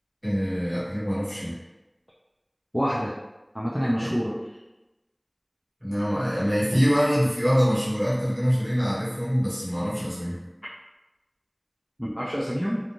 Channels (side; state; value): both; identical; correlation 1.00